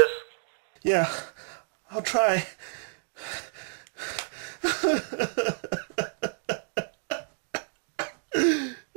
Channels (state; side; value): silent; left; digital silence